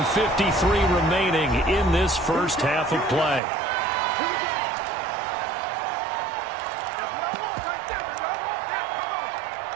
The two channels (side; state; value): left; drops out; at 3.4 s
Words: remaining in this first half of play.